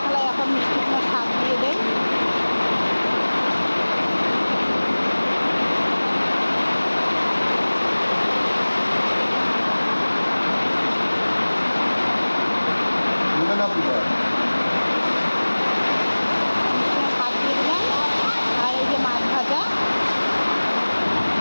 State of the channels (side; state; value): both; inverted; correlation -1.00